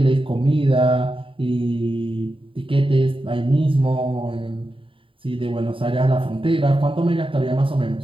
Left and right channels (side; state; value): left; late; 0.25 ms